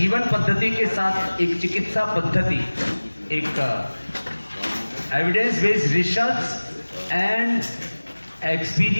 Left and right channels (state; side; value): inverted; both; correlation -1.00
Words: पद्धति के साथ एक चिकित्सा पद्धति, एक evidence based research and